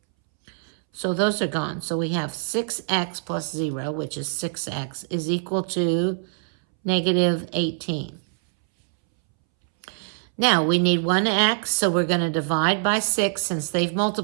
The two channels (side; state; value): left; silent; 63 dB below the other